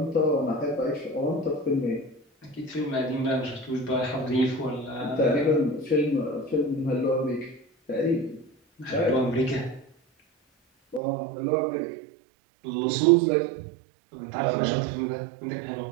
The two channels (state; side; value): drops out; left; at 11.0 s